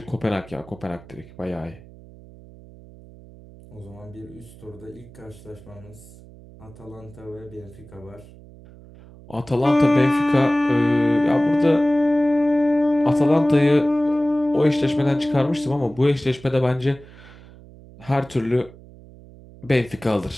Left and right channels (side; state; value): right; noise; hum, 21 dB below the sound